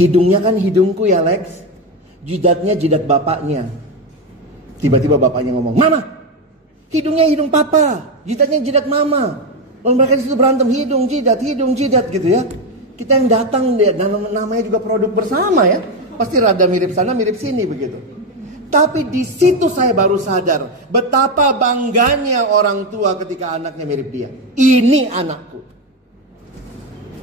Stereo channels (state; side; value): normal; both; correlation 0.11